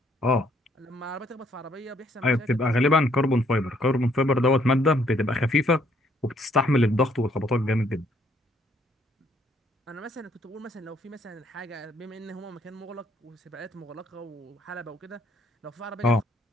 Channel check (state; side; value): normal; both; correlation 0.67